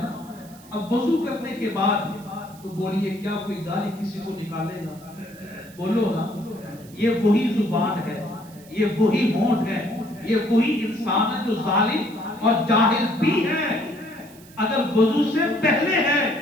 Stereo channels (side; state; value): right; noise; hiss, 23 dB below the sound